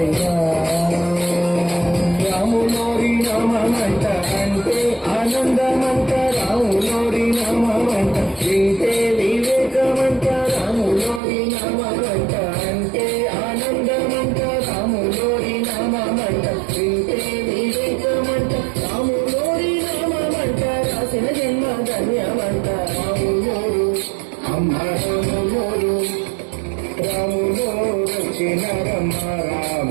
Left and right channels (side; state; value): left; drops out; at 11.2 s